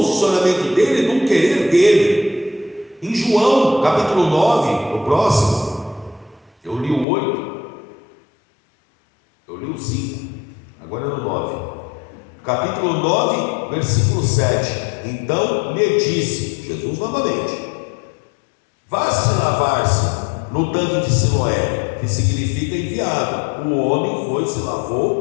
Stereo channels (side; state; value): right; drops out; at 7.1 s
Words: dele, do querer dele. Em João, capítulo 9, no próximo, eu li o 8, eu li o 5, agora é no 9. Capítulo 9, versículo 7. Então me disse, Jesus novamente: vá-se lavar-se no tanque de Siloé, que significa enviado. O homem foi, se